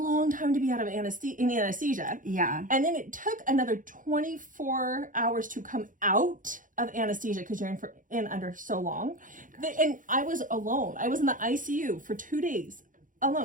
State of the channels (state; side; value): late; left; 0.38 ms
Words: time to be out of anesthesia. Yeah. And then it took another 24 hours to come out of anesthesia because you're in under so long. And I was alone. I was in the ICU for 2 days